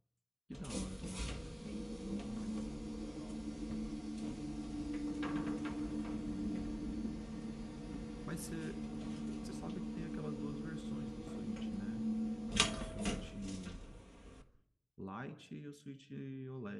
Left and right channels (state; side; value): identical; both; correlation 1.00